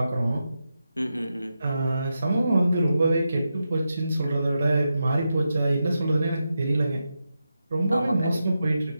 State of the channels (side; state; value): both; inverted; correlation -0.88